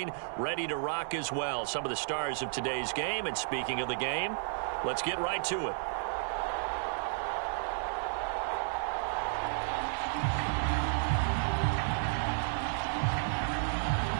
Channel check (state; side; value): silent; left; digital silence